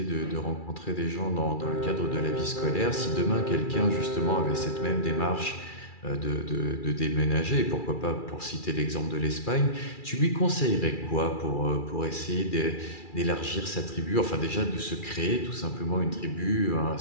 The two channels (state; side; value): late; right; 2.4 ms